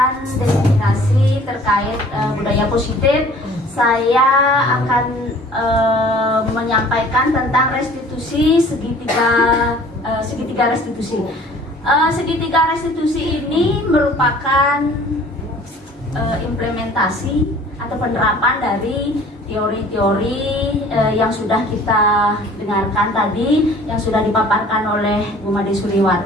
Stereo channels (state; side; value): normal; both; correlation 0.50